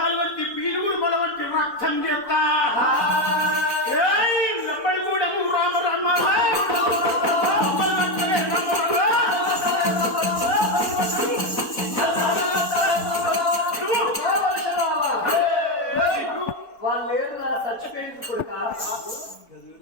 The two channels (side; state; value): right; late; 4.0 ms